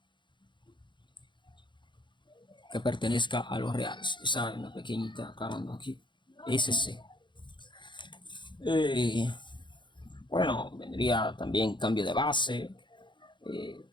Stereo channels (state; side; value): late; right; 0.23 ms